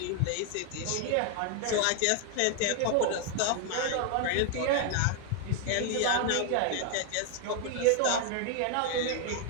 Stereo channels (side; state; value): both; different; correlation 0.00